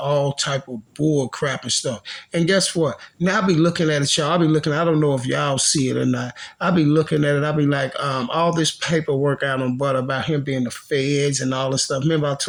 type of bull crap and stuff. And guess what? Now I be looking at it, y'all. I don't know if y'all see it or not. I be looking at it. I be like, all this paperwork out on Butta about him being the feds and all this stuff. Remember I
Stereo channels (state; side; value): identical; both; correlation 1.00